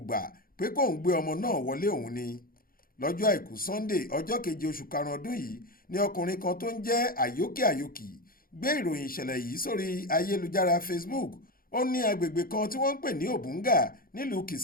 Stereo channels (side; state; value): right; late; 0.42 ms